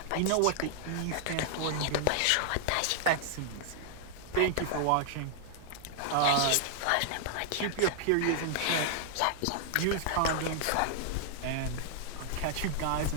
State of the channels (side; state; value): both; different; correlation 0.00